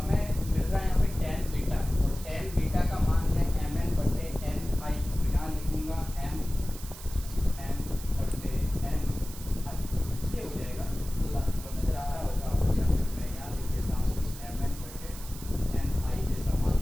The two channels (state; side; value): noise; right; hiss, 14 dB below the sound